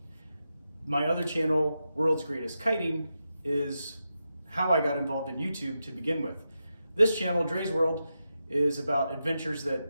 My other channel, World's Greatest Kiting, is how I got involved in YouTube to begin with. This channel, Dre's World, is about adventures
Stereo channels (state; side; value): inverted; both; correlation -0.88